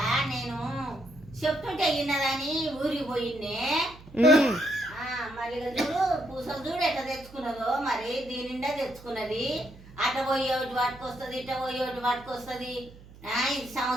నేను చెప్తుంటే ఇన్నదని ఊరికి పోయిండే. మరి ఇక చూడు పూసలు చూడు ఎట్లా తెచ్చుకున్నదో, మరి దీని నిండా తెచ్చుకున్నది. అట్ట పోయే ఒకటి పట్టుకొస్తుంది, ఇట్ట పోయే ఒకటి పట్టుకొస్తుంది. ఇది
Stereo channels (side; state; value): right; noise; hum, 20 dB below the sound